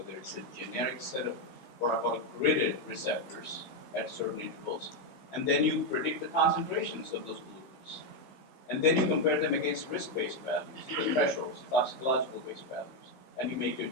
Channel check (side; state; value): right; late; 15 ms